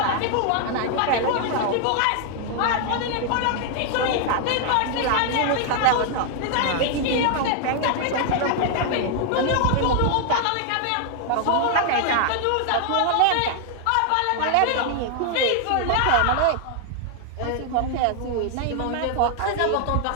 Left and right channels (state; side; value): different; both; correlation 0.00